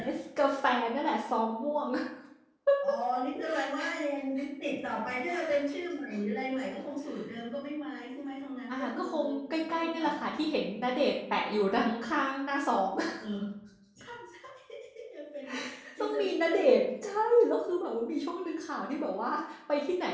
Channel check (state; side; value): identical; both; correlation 1.00